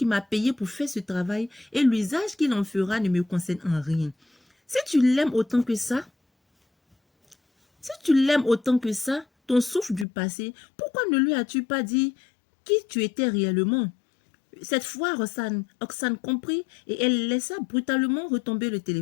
m'a payé pour faire ce travail et l'usage qu'il en fera ne me concerne en rien. Si tu l'aimes autant que ça, ton souffle du passé, pourquoi ne lui as-tu pas dit qui tu étais réellement? » Cette fois, Oxane comprit et elle laissa brutalement retomber le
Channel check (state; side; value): drops out; right; at 10.1 s